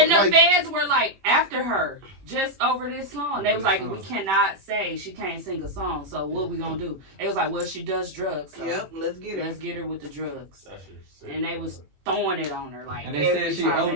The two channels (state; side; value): late; left; 21 ms